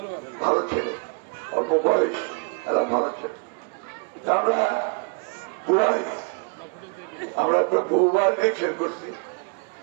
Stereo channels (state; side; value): quieter; left; 34.9 dB